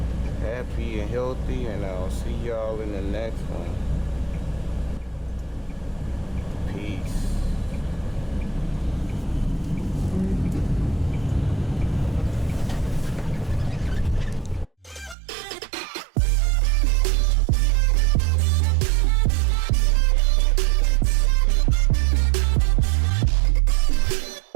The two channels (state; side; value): drops out; left; at 15.2 s